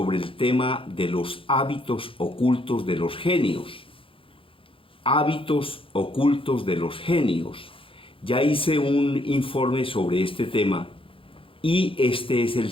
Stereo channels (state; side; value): late; right; 0.26 ms